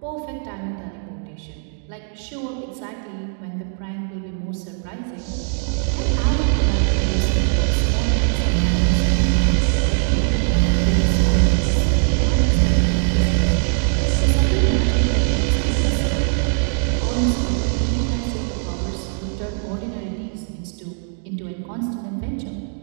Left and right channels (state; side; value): silent; left; 65 dB below the other